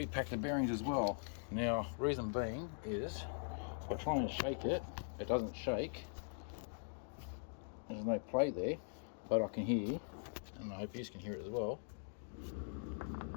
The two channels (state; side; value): silent; right; digital silence